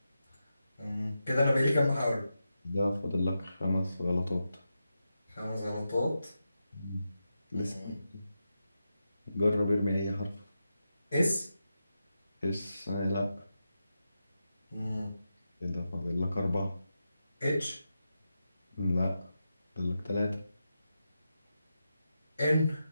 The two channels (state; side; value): inverted; both; correlation -0.89